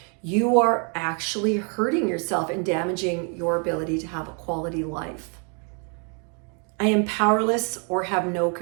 you are actually hurting yourself and damaging your ability to have a quality life. I am powerless or have no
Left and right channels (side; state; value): left; quieter; 38.8 dB